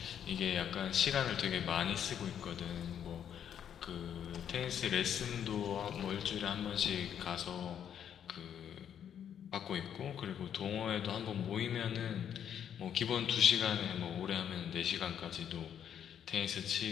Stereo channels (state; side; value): quieter; right; 9.1 dB